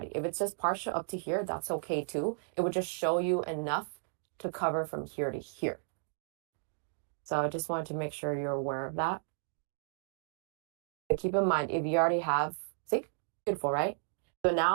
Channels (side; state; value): left; silent; digital silence